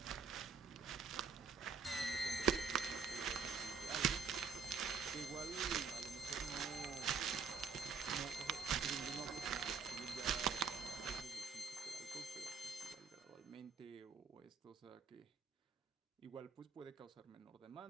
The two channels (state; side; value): quieter; left; 5.5 dB